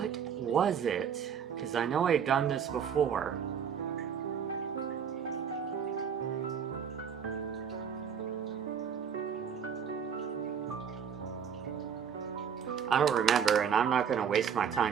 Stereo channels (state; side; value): quieter; left; 7.5 dB